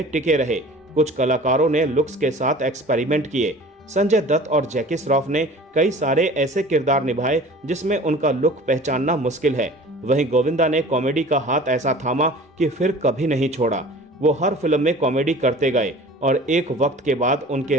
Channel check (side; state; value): both; normal; correlation 0.43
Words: टिके रहे। कुछ कलाकारों ने लुक्स के साथ एक्सपेरिमेंट किए। संजय दत्त और जैकी श्रॉफ ने कई सारे ऐसे किरदार निभाए जिसमें उनका लुक पहचानना मुश्किल है। वहीं गोविंदा ने कॉमेडी का हाथ ऐसा थामा कि फिर कभी नहीं छोड़ा। वो हर फिल्म में कॉमेडी करते गए और एक वक्त के बाद